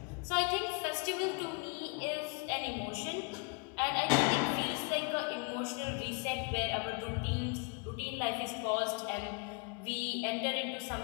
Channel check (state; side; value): quieter; right; 33.4 dB